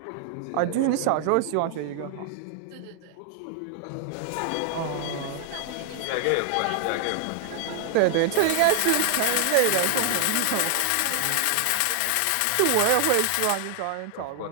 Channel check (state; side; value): different; both; correlation 0.00